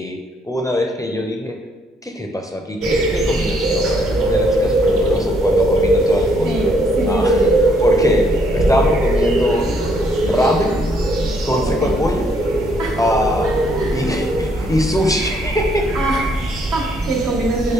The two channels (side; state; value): both; normal; correlation 0.69